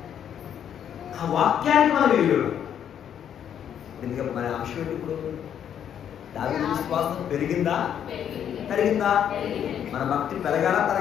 ఆ వాక్యాన్ని మనం విలువ. ఎందుకంటే మన అంశం ఏంటి? ఇప్పుడు దావీదు విశ్వాసం పెరిగిందా తరిగిందా? మన భక్తి పెరగాలా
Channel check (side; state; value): right; quieter; 9.2 dB